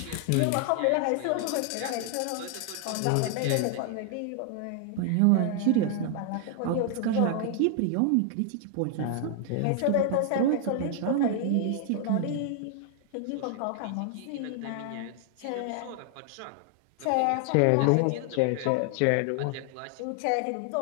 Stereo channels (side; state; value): both; different; correlation 0.00